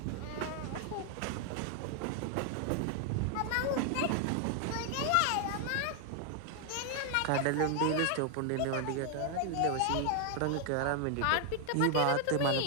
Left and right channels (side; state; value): both; different; correlation 0.00